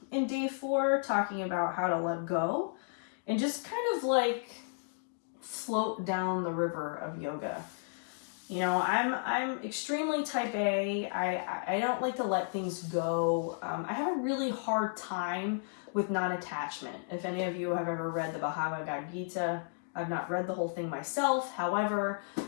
in day 4, talking about how to let go and just kind of like float down the river of yoga. You know, I'm extremely type A. I don't like to let things go. I have a really hard time with non-attachment. If any of you have ever read the Bhagavad Gita, I've not read the whole thing myself. However,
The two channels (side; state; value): right; silent; digital silence